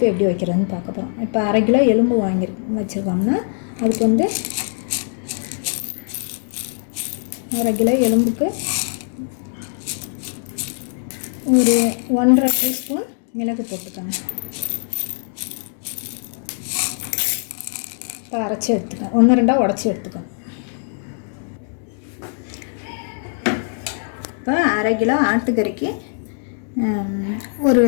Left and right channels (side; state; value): right; silent; digital silence